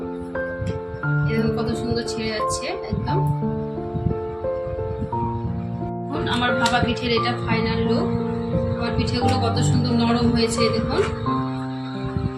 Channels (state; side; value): identical; both; correlation 1.00